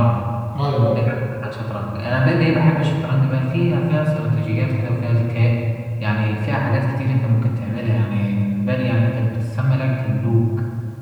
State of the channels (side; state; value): both; identical; correlation 1.00